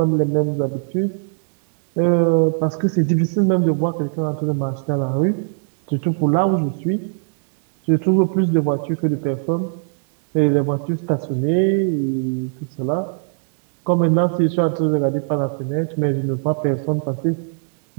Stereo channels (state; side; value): silent; left; digital silence